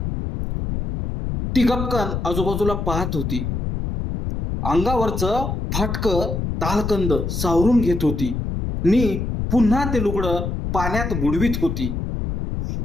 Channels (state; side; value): noise; left; rumble, 3 dB below the sound